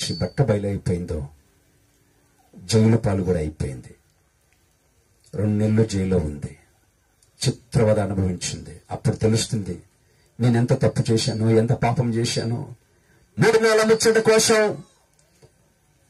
బట్ట బయలైపోయిందో జైలు పాలు కూడా అయిపోయింది. 2 నెలలు జైల్లో ఉంది, చిత్రవద అనుభవించింది. అప్పుడు తెలుస్తుంది నేనెంత తప్పు చేశానో, ఎంత పాపం చేశానో. 3 నెలల ముచ్చట కోసం,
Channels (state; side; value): identical; both; correlation 1.00